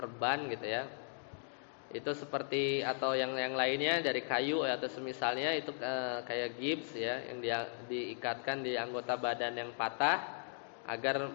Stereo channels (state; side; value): silent; right; digital silence